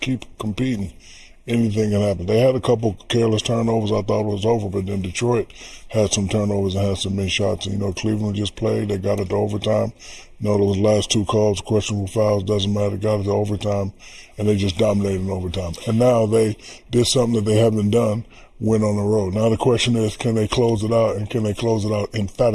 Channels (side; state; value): both; identical; correlation 1.00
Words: competing, anything can happen. They had a couple careless turnovers. I thought it was over, but then Detroit had some turnovers and had some missed shots. And, you know, Cleveland just played. They got it to overtime. You know, those last 2 calls, questionable fouls, doesn't matter. Got it to overtime, and they just dominated in overtime. And now they did something that they haven't done, went on the road. Now the question is, can they close it out, and can they close it out